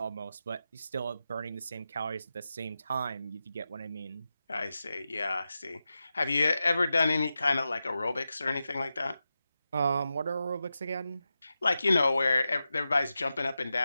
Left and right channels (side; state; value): both; inverted; correlation -0.91